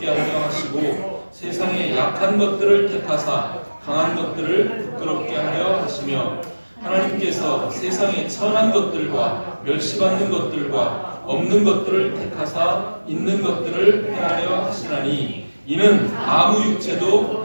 하려 하시고 세상의 약한 것들을 택하사 강한 것들을 부끄럽게 하려 하시며 하나님께서 세상의 천한 것들과 멸시받는 것들과 없는 것들을 택하사 있는 것들을 행하려 하시나니 이는 아무 육체도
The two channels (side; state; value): both; inverted; correlation -1.00